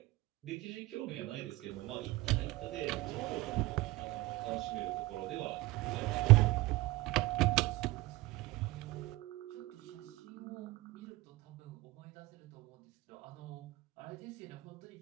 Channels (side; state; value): left; quieter; 19.7 dB